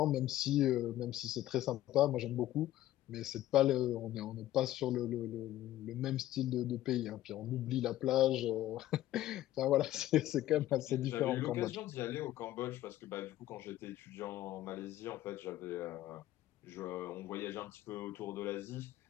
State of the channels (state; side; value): quieter; right; 14.2 dB